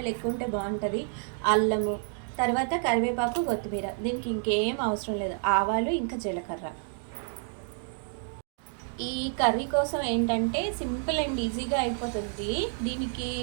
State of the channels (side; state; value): left; silent; 56 dB below the other